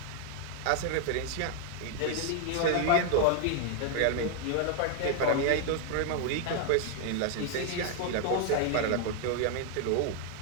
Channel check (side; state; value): both; different; correlation 0.00